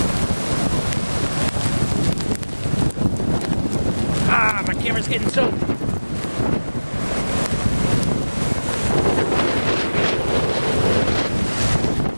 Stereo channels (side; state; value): both; inverted; correlation -1.00